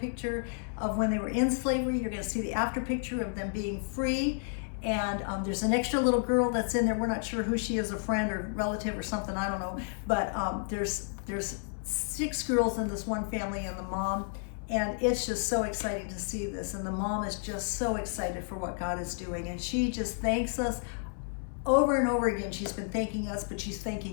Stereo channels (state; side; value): silent; right; 57 dB below the other